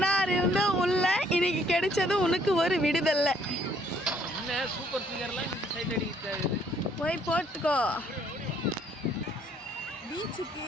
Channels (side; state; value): both; normal; correlation 0.64